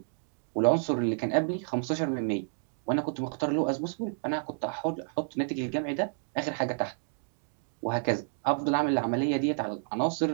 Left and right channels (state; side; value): silent; left; digital silence